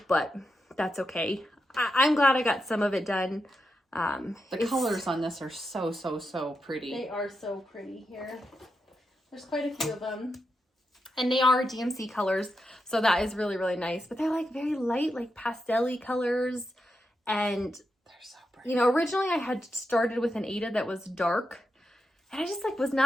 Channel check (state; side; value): normal; both; correlation 0.86